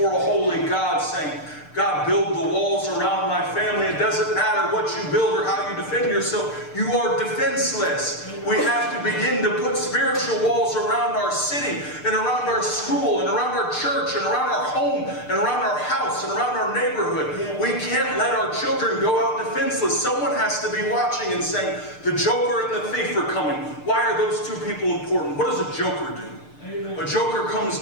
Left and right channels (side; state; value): right; late; 6.7 ms